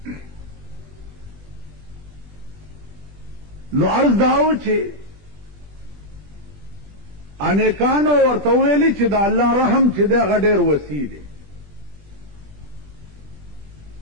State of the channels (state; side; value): late; left; 21 ms